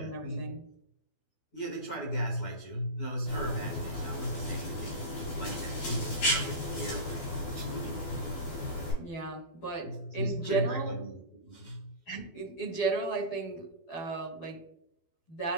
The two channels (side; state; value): right; late; 12 ms